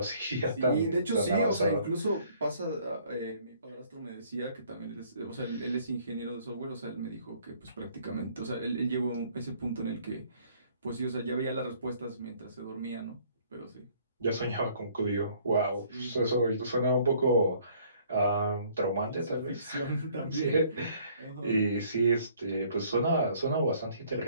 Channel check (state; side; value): inverted; both; correlation -0.60